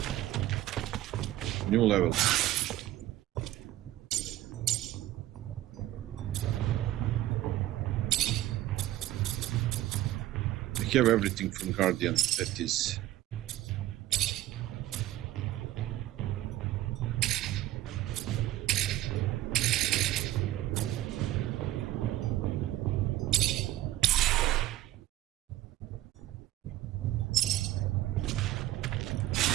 New level. I have everything from Guardian. That is.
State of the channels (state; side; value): quieter; left; 14.9 dB